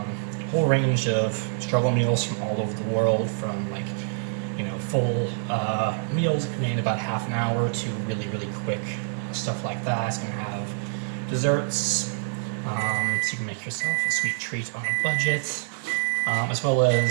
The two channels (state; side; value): silent; left; digital silence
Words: whole range of struggle meals from all over the world, from like, full meals that can be in about half an hour to really, really quick stuff like that. It's going to have desserts, so you can make yourself a sweet treat on a budget, as well